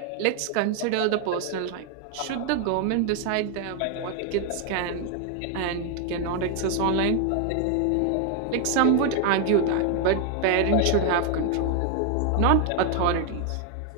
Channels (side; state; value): both; different; correlation 0.00